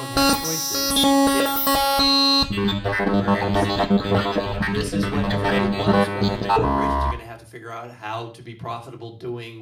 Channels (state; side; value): identical; both; correlation 1.00